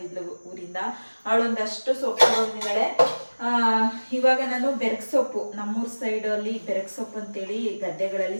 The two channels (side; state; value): both; inverted; correlation -1.00